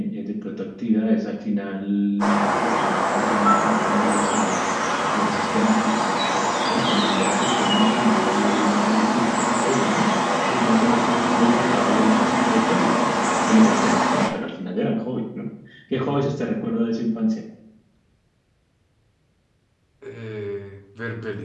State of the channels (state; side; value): identical; both; correlation 1.00